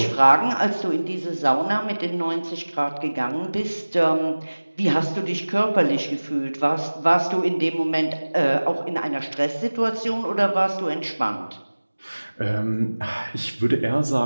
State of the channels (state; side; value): inverted; both; correlation -1.00